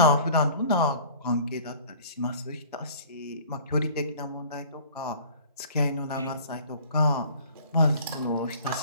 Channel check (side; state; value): both; inverted; correlation -0.48